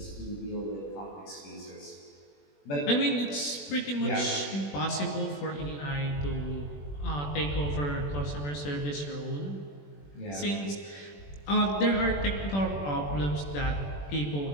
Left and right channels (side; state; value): right; late; 21 ms